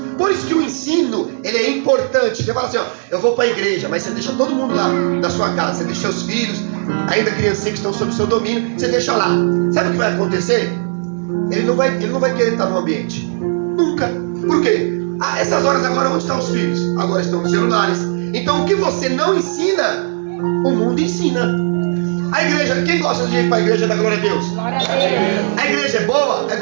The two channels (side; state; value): left; silent; digital silence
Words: Por isso que o ensino, ele é importante. Você fala assim, ó, eu vou para a igreja, mas você deixa todo mundo lá na sua casa, você deixa os filhos, ainda criancinhas que estão sob o seu domínio, você deixa lá. Sabe o que vai acontecer? Ele não vai querer estar no ambiente. Nunca. Por quê? Essas horas agora, onde estão os filhos? Agora estão nos celulares. Então o que você não ensina, o mundo ensina. A igreja, quem gosta de ir para a igreja da glória a Deus? Glória a Deus. A igreja é boa? É